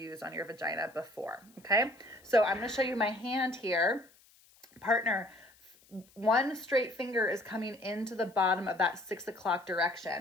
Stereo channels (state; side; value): noise; left; hiss, 29 dB below the sound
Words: on your vagina before, okay? So I'm gonna show you my hand here. Partner, one straight finger is coming into the bottom of that 6 o'clock